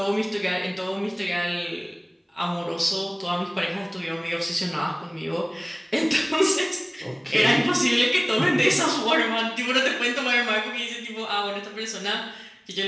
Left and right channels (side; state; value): both; identical; correlation 1.00